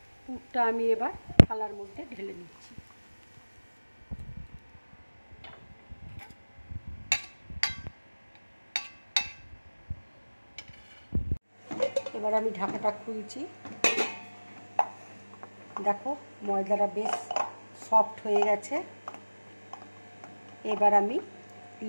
পুরটা আমি এবার থালার মধ্যে ঢেলে নিচ্ছি। এবার আমি ঢাকাটা খুলছি। দেখো, ময়দাটা বেশ সফট হয়ে গেছে। এবার আমি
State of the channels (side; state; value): both; inverted; correlation -1.00